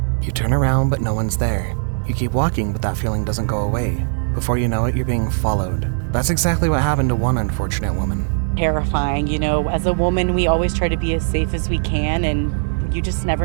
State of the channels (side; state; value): left; silent; digital silence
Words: You turn around but no one's there. You keep walking but that feeling doesn't go away. Before you know it, you're being followed. That's exactly what happened to one unfortunate woman. Terrifying, as a woman we always try to be as safe as we can and you just